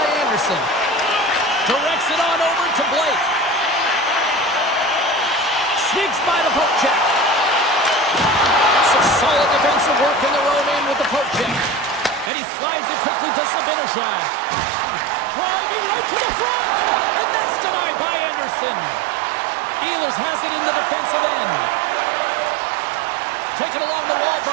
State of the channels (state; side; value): drops out; left; at 12.3 s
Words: Anderson. Directs it on over to Blake. Sneaks by the poke check. Some solid defensive work in their own end with the poke check. And he slides it quickly to Sabinishad. Driving right to the front. And that's denied by Anderson. Ehlers has it in the defensive end. Taken along the wall